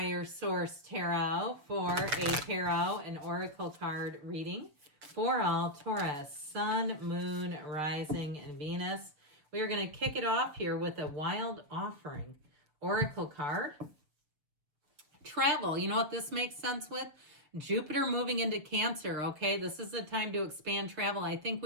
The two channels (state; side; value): late; left; 6.7 ms